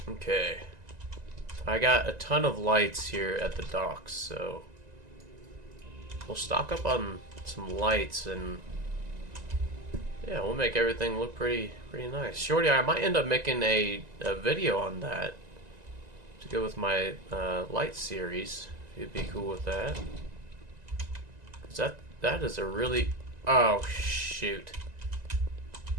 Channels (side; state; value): left; late; 1.9 ms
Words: Okay. I got a ton of lights here at the docks, so we'll stock up on some lights and yeah, we'll make everything look pretty nice. Shorty, I might end up making a video on that to go with my light series. If you'd be cool with that. 'Cause that is a really... Oh, shoot.